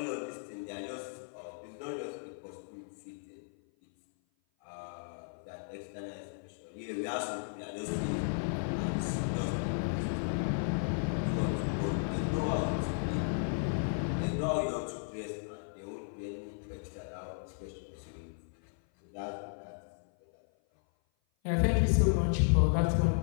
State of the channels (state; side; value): silent; right; 55 dB below the other